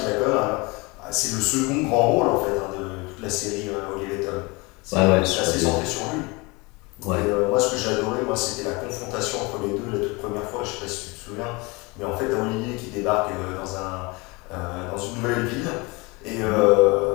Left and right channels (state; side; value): quieter; right; 26.3 dB